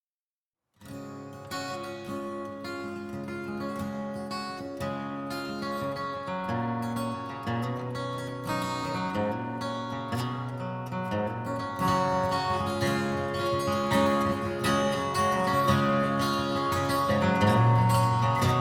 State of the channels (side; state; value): both; identical; correlation 1.00